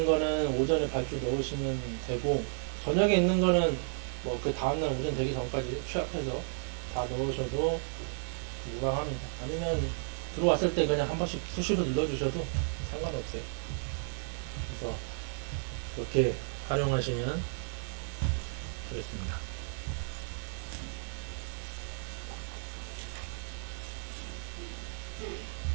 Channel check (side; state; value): left; silent; digital silence